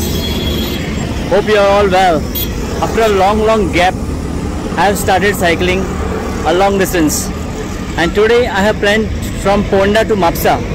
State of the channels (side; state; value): both; identical; correlation 1.00